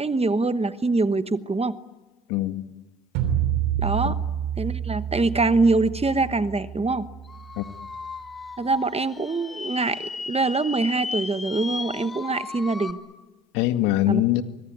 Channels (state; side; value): normal; both; correlation 0.52